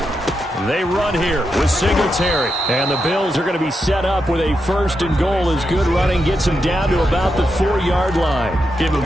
They run here with Singletary. And the Bills are going to be set up with a 1st and goal as good running gets him down to about the 4-yard line. Give him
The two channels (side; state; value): both; normal; correlation 0.85